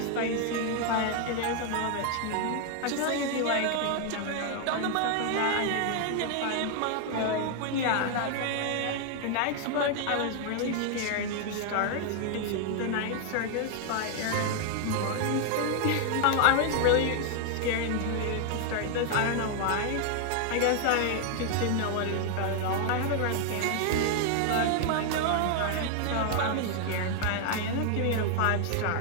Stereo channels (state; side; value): different; both; correlation 0.00